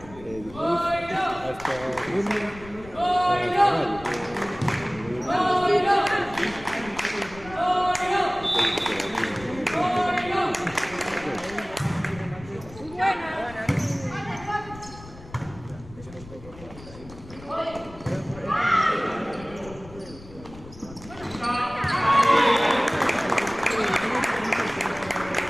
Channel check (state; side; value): noise; left; rumble, 18 dB below the sound